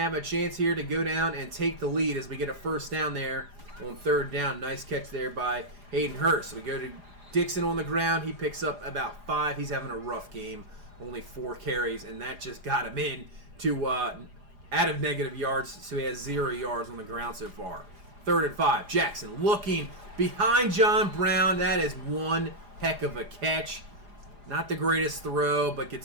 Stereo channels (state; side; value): late; left; 4.9 ms